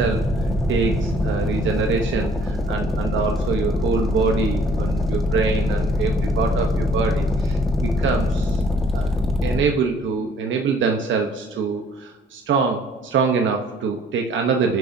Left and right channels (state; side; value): normal; both; correlation 0.58